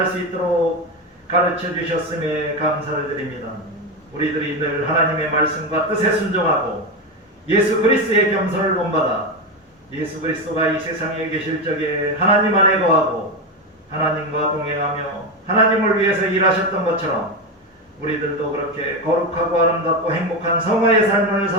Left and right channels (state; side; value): normal; both; correlation 0.14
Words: 수 있도록 가르쳐 주셨음에 감사를 드립니다. 우리들이 늘 하나님의 말씀과 뜻에 순종하고 예수 그리스도의 겸손을 본받아 예수 그리스도가 이 세상에 계실 적에 하나님 안에 거하고 하나님과 동행하며 하나님을 위해서 일하셨던 것처럼 우리들도 그렇게 거룩하고 아름답고 행복한 성화의 삶을